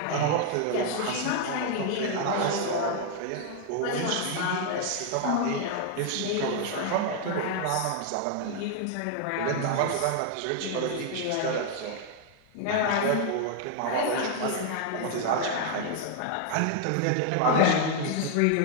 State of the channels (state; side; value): different; both; correlation 0.00